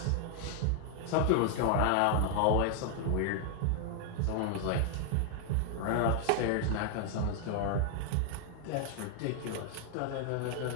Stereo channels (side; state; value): both; different; correlation 0.00